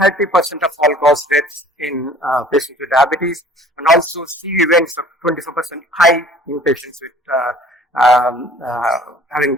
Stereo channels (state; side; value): normal; both; correlation 0.50